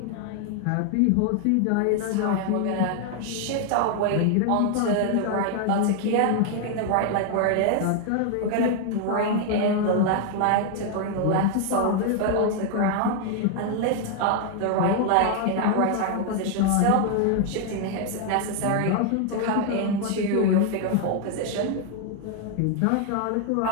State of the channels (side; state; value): both; different; correlation 0.00